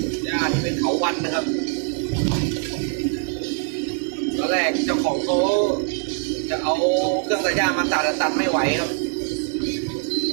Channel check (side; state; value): left; quieter; 35.4 dB